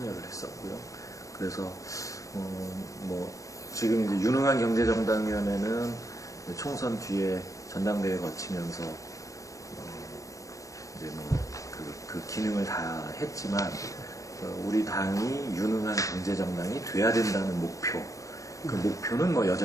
했었고요. 그래서 지금 이제 유능한 경제정당위원회는 총선 뒤에 전당대회 거치면서 이제 그 기능을 다 했지만 우리 당이 유능한 경제정당이 돼야 된다는 목표, 그 목표는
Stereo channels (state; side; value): late; right; 0.16 ms